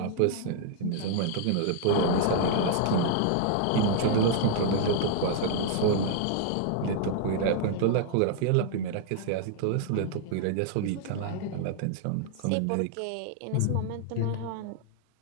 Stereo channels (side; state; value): both; different; correlation -0.01